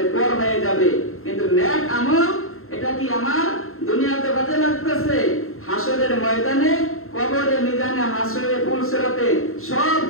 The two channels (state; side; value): late; right; 0.62 ms